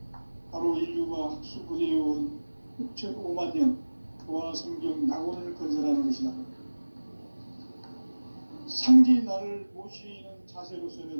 바로 인류가 학수고대해온 6,500만 년 조화 성경 낙원을 건설하는 것이다. 상제인 나를 모시는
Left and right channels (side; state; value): both; inverted; correlation -1.00